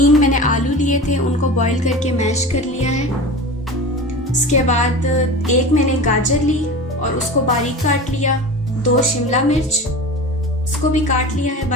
मैंने आलू लिए थे, उनको बॉईल करके मैश कर लिया है। उसके बाद 1 मैंने गाजर ली और उसको बारीक काट लिया। 2 शिमला मिर्च, उसको भी काट लिया है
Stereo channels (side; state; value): both; normal; correlation 0.32